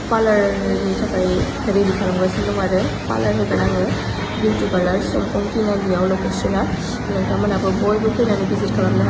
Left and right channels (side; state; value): both; identical; correlation 1.00